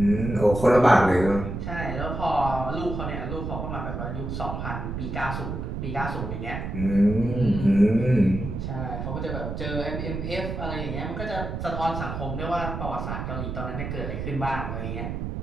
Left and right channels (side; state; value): right; noise; rumble, 5 dB below the sound